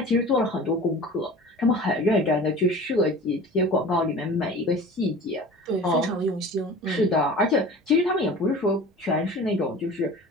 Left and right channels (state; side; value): normal; both; correlation 0.39